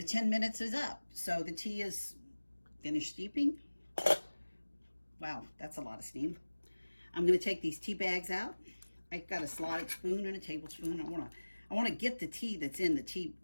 10 minutes is up. So the tea is finished steeping. Wow, that's a lot of steam. I'm going to take these tea bags out. I've got a slotted spoon and a tablespoon. I want to get the tea that's in the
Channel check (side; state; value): both; inverted; correlation -1.00